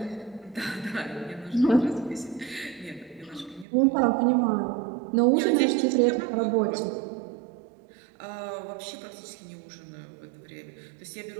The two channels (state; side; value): drops out; left; at 3.7 s